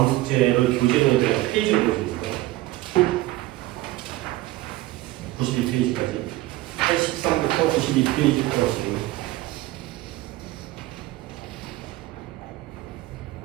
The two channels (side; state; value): left; quieter; 17.4 dB